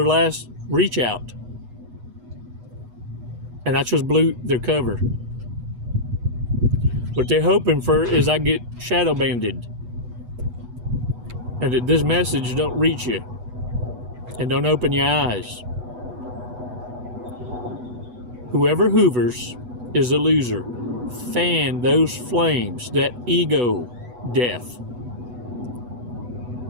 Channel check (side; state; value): left; late; 8.1 ms